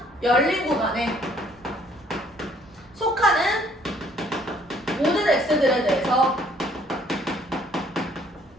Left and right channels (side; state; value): right; noise; hum, 30 dB below the sound